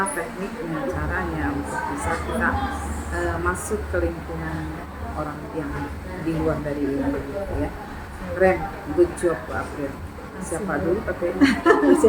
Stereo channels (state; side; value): identical; both; correlation 1.00